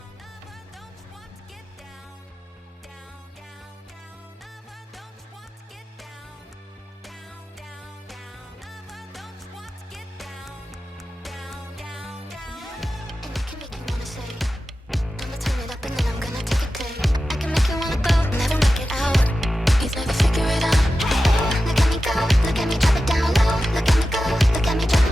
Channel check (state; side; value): normal; both; correlation 0.93